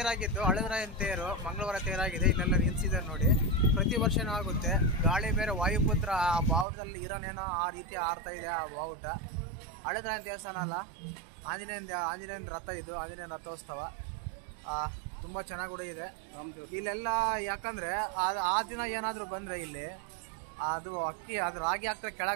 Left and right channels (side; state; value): left; drops out; at 6.7 s